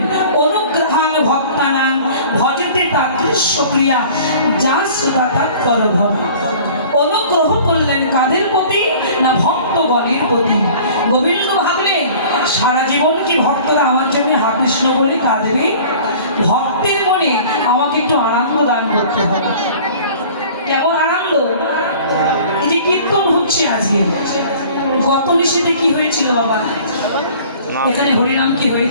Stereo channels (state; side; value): inverted; both; correlation -0.47